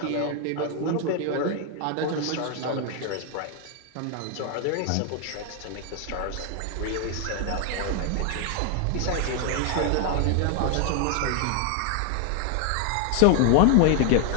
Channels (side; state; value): both; different; correlation 0.00